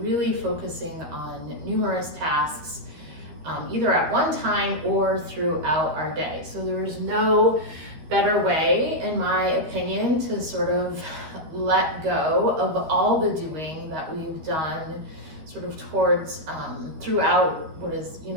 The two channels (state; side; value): late; left; 13 ms